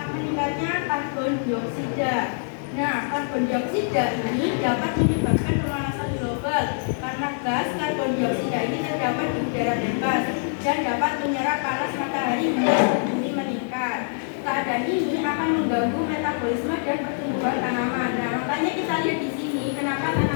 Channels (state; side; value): silent; right; digital silence